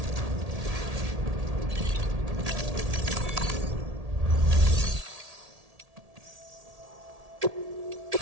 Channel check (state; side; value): late; left; 1.8 ms